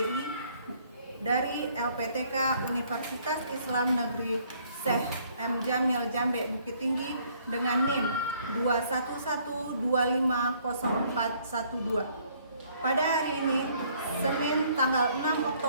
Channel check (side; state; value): both; inverted; correlation -0.63